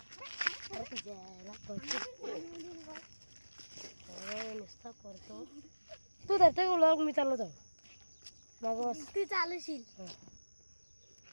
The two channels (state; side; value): inverted; both; correlation -1.00